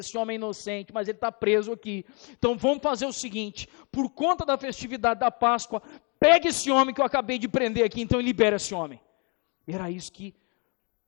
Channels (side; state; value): right; quieter; 34.3 dB